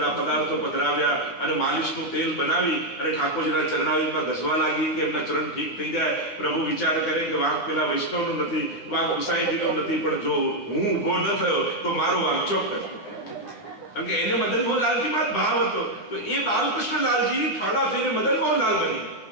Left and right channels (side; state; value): right; late; 10 ms